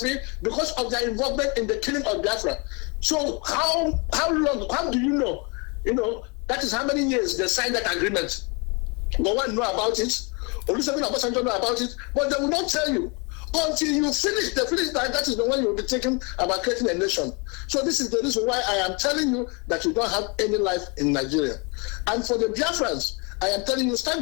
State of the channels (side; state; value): right; quieter; 31.7 dB